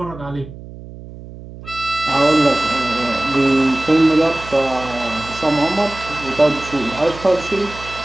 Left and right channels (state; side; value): noise; right; hum, 15 dB below the sound